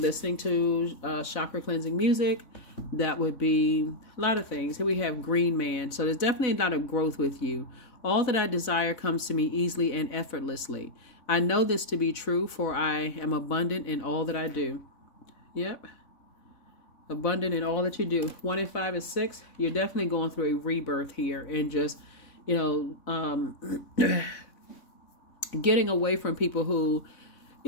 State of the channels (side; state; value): right; late; 3.6 ms